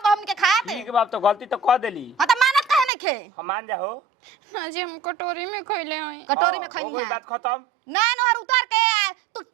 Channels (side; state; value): left; drops out; at 2.9 s